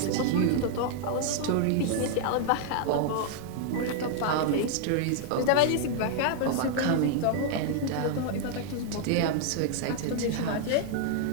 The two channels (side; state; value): both; different; correlation -0.01